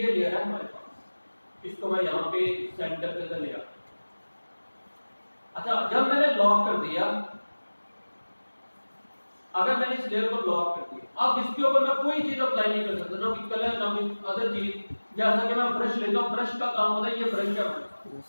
लेयर है हमारे पास, इसको मैं यहाँ पे सेंटर के अंदर ले आता। अच्छा, जब मैंने लॉक कर दिया, अगर मैंने इस लेयर को लॉक कर दिया, अब इसके ऊपर मैं कोई चीज अप्लाई नहीं कर सकता, ना कलर ना अदर चीज। जैसा कि मैं ब्रश लेता हूँ, ब्रश का काम होता है, ये ब्रश का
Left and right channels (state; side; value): inverted; both; correlation -1.00